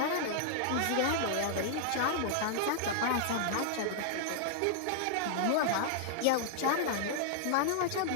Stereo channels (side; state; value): both; different; correlation -0.01